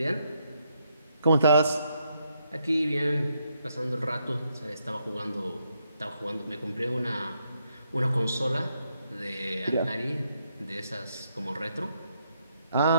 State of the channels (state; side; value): inverted; both; correlation -0.77